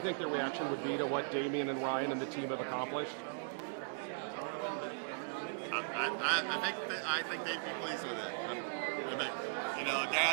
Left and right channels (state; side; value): silent; left; digital silence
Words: think their reaction would be to what Damien and Ryan and the team have accomplished? I think they'd be pleased with it.